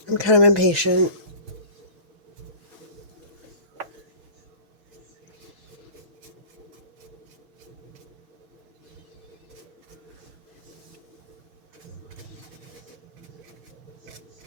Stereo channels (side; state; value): left; late; 6.5 ms